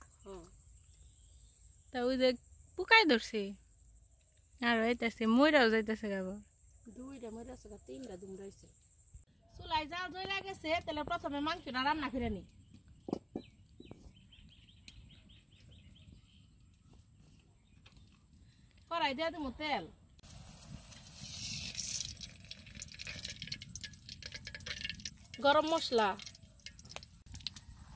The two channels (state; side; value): identical; both; correlation 1.00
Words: তা ওই যে পুকাই ধরছে আর হইতেছে ময়রাও যাইতেছে গাবো। দুইটা ময়রাছে, তিনটা দুমরাইছে। চুলাই জাল জ্বলে গেছে, তাহলে প্রথমে মাংসটা রান্না করে নি। কড়াই দিয়ে দেবো তেল, গরম মশলা,